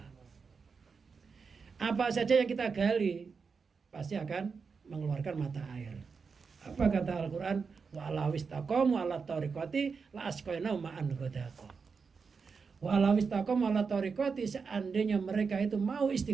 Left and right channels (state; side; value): quieter; left; 5.3 dB